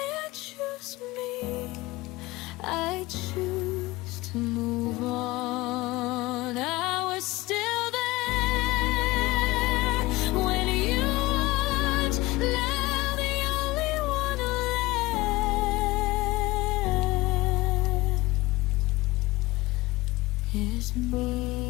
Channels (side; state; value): right; quieter; 20.1 dB